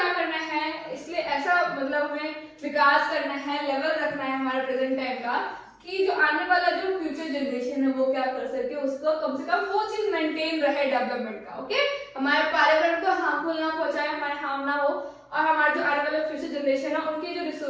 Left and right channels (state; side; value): identical; both; correlation 1.00